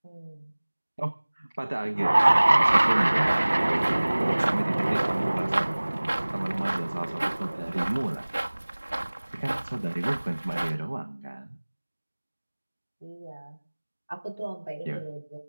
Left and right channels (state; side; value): inverted; both; correlation -1.00